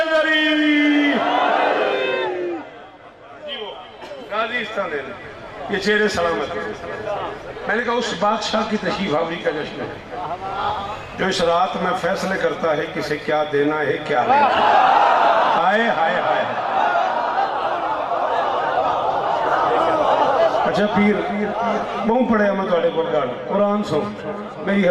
ये चेहरे सलामत। मैंने कहा उस बादशाह की तशरीफ आवरी का जश्न है जो इस रात में फैसले करता है किसे क्या देना है क्या लेना। हाय हाय हाय। अच्छा पीर बहुत पढ़िया मैं थोड़े को कुरान सुन मेरी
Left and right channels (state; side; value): identical; both; correlation 1.00